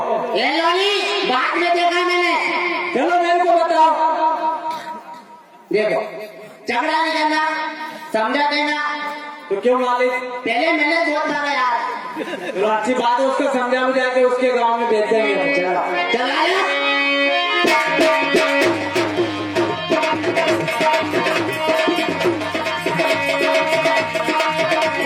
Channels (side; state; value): both; identical; correlation 1.00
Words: ये लोनी बाद में देखा मैंने चलो मेरे को बताओ। देखो झगड़ा नहीं करना समझा देना तो क्यों मालिक? पहले मैंने बहुत मारा यार तो अच्छी बात है, उसको समझा बुझा के उसके गांव में भेज देंगे। चलाया